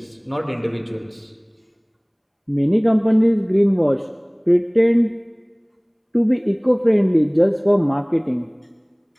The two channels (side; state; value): both; identical; correlation 1.00